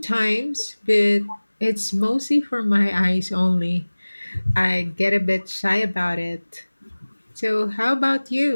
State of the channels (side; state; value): both; inverted; correlation -1.00